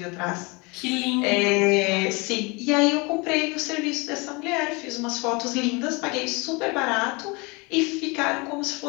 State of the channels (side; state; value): right; quieter; 27.8 dB